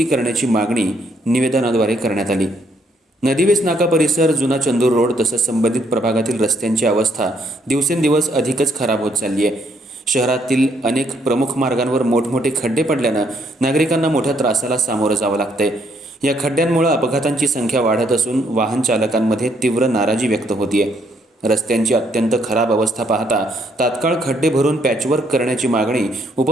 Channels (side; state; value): both; normal; correlation 0.71